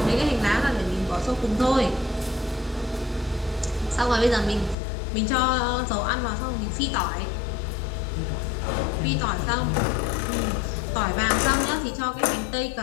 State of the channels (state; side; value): drops out; right; at 4.8 s